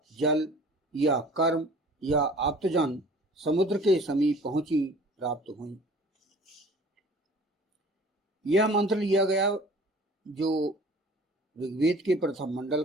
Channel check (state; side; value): normal; both; correlation 0.48